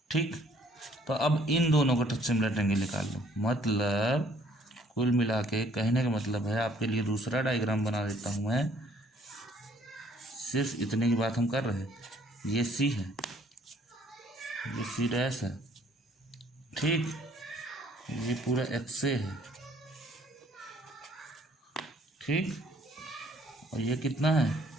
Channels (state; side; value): normal; both; correlation 0.61